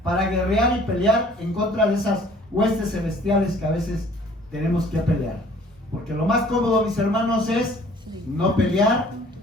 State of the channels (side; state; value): both; normal; correlation 0.54